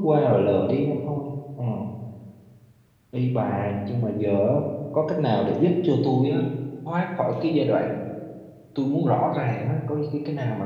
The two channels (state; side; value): identical; both; correlation 1.00